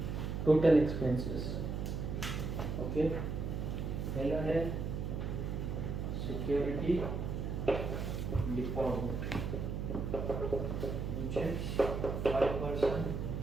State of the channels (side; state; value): right; noise; hum, 3 dB below the sound